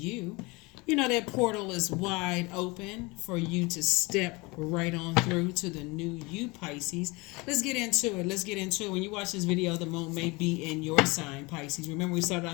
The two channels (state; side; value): quieter; right; 25.3 dB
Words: You know that portal is wide open for you to step right on through to the new you, Pisces. Let's get into it. Let's get into it. When you watch this video, the moon may be in your sign, Pisces. Remember, we started